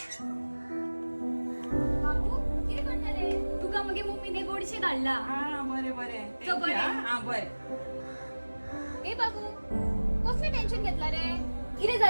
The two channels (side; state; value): both; inverted; correlation -1.00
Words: बाबू किती करतले तुका मगे मम्मीने गोडशे धाडला बरे बरे चल बरे. बरे ए बाबू कसले टेन्शन घेतला रे किती